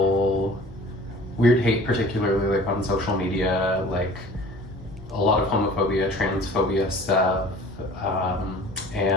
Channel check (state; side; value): normal; both; correlation 0.46